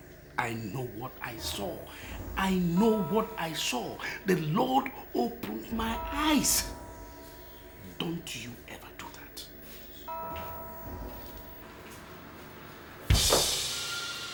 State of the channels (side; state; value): both; identical; correlation 1.00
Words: I know what I saw. I know what I saw. The Lord opened my eyes. Don't you ever do that.